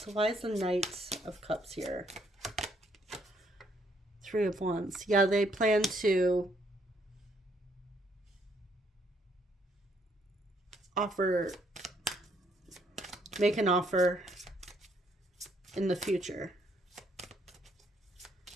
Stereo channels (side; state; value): both; normal; correlation 0.70